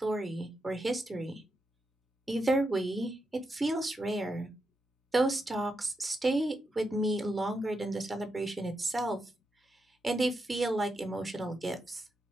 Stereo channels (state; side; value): normal; both; correlation 0.85